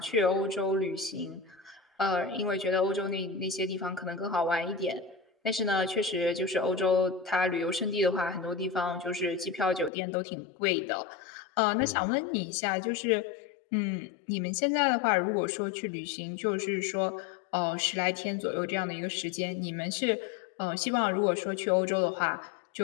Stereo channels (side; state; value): right; drops out; at 9.9 s